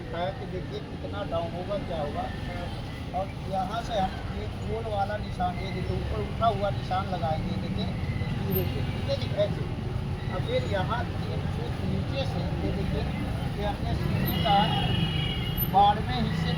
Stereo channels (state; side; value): identical; both; correlation 1.00